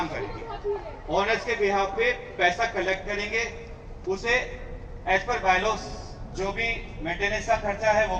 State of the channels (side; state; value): both; identical; correlation 1.00